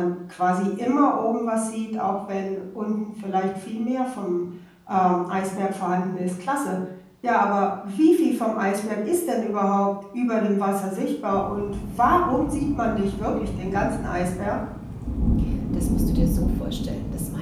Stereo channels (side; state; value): both; identical; correlation 1.00